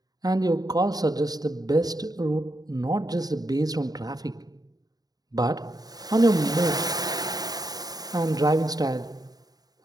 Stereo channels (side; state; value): left; late; 0.18 ms